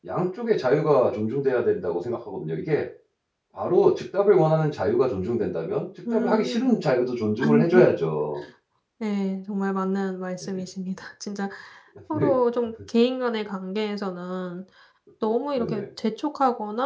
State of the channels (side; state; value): both; identical; correlation 1.00